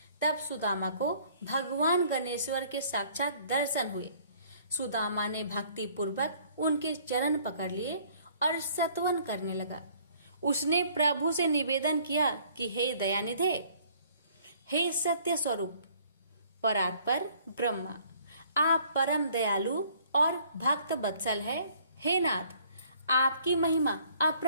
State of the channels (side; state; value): both; inverted; correlation -0.59